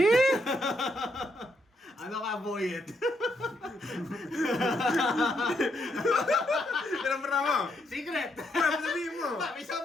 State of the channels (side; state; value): both; normal; correlation 0.77